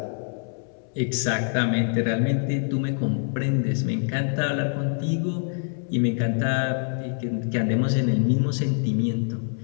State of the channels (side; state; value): right; silent; 62 dB below the other